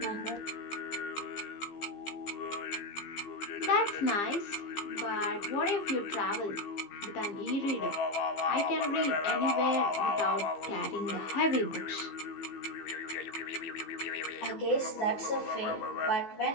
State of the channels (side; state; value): right; late; 14 ms